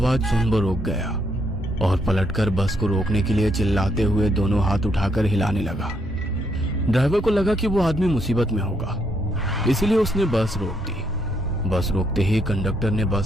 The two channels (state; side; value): normal; both; correlation 0.74